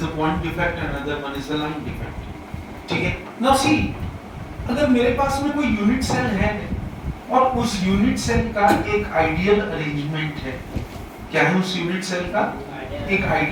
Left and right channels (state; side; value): identical; both; correlation 1.00